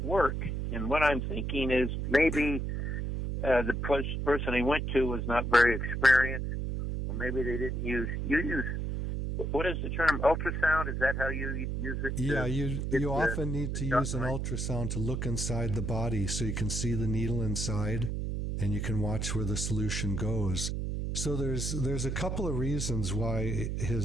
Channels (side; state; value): right; noise; hum, 2 dB below the sound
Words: work. And what I'm thinking is maybe the person he went to was not very experienced, or maybe they didn't use. You use. What is the term? Ultrasound? Is that how you use it? Yeah, you often need to use an ultrasound to look inside the body so you can see the needle inside and you can watch where the solution goes. So there's a couple of reasons why